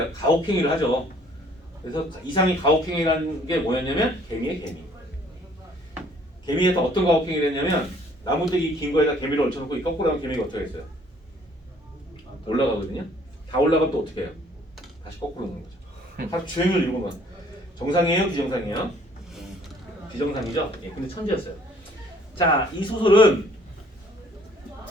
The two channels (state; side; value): normal; both; correlation 0.59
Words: 가혹행위를 하죠. 그래서 이상이 가혹행위라는 게 뭐였냐면 개미의 개미. 개미에서 어떤 가혹행위를 했냐면 나무대기 긴 거에다 개미를 얹혀놓고 이 거꾸로 하면 개미가 어떻게 했어요? 올라가거든요. 다 올라가면 또 어떻게 해요? 다시 거꾸로 놓는 거죠. 하루 종일 이러고만. 정상이에요? 비정상이에요? 비정상이죠? 예, 근데 천재였어요. 자, 이 소설은